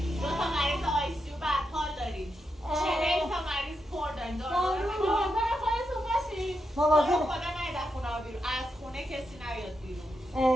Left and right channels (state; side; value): normal; both; correlation 0.85